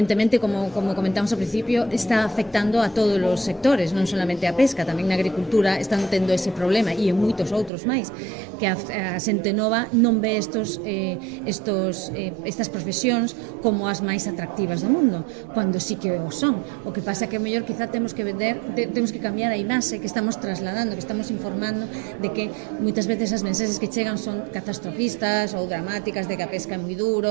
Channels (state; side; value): drops out; left; at 7.7 s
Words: como comentamos ao principio, está afectando a todos os sectores, non solamente a pesca, tamén na agricultura están tendo ese problema, e en moitos outros máis, que a xente nova non ve estas profesións como as máis atractivas do mundo, cando sí que o son. O que pasa que, mellor, quizá temos temos que vender, temos que cambiar a imaxe que estamos trasladando, que estamos informando de que moitas veces as mensaxes que chegan son catastrofistas ou dramáticas, de que a pesca é moi